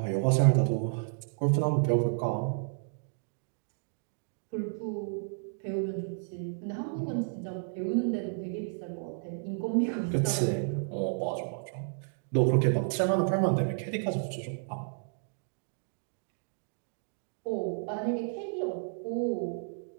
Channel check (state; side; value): silent; left; digital silence